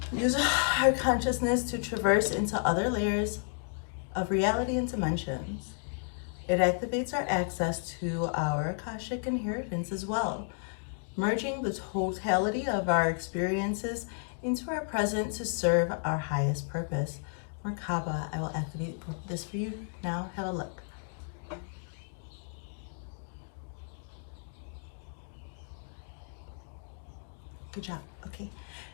use our consciousness to traverse into other layers of reality and dimensions. It activates our access to our Akashic inheritance as well. merging the totality of our experiences into our present to serve our highest purpose. Merkaba, I will activate this for you now. Have a look. Good job. Okay.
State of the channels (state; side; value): silent; right; 56 dB below the other